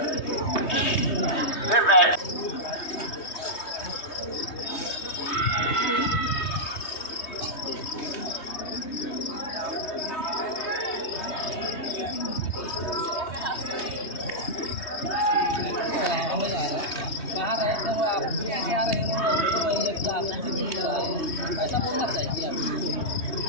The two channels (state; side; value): late; right; 3.2 ms